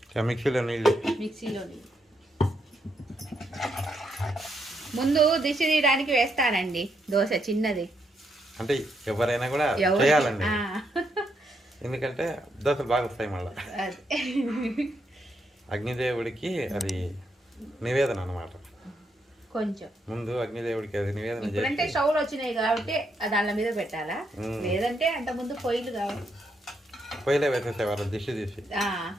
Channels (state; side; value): normal; both; correlation 0.78